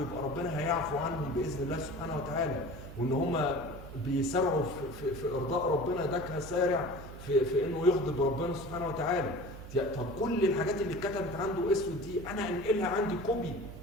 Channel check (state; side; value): noise; right; hum, 13 dB below the sound